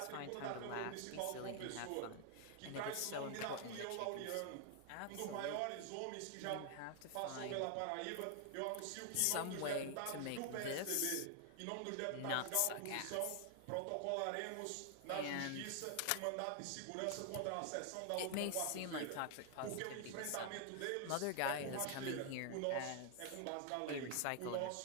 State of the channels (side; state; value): both; different; correlation 0.00